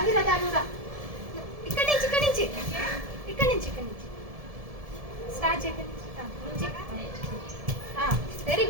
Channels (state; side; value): late; left; 1.7 ms